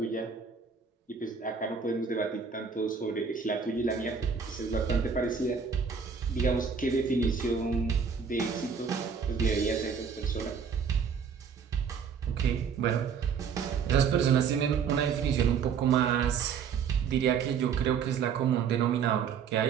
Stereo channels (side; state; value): left; quieter; 6.4 dB